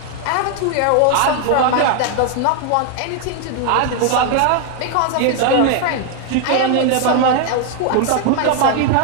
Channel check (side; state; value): both; different; correlation 0.00